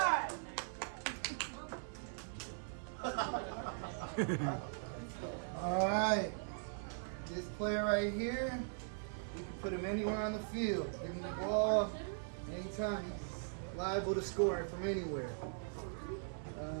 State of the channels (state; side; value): silent; left; 51 dB below the other